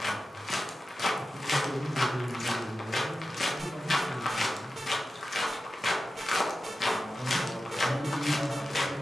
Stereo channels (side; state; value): both; normal; correlation 0.93